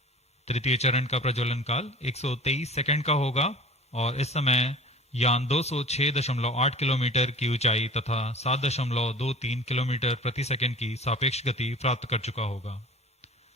तृतीय चरण का प्रज्वलन काल 123 सेकंड का होगा और इस समय यान 206.8 किलोमीटर की ऊंचाई तथा 7.23 किलोमीटर प्रति सेकंड की सापेक्ष गति प्राप्त कर चुका होगा।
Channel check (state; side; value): normal; both; correlation 0.41